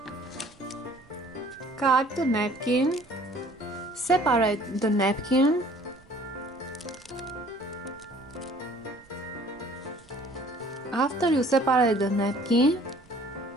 Cut the napkin. Separate the napkin. After you separate the napkin,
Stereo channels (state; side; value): noise; right; rumble, 27 dB below the sound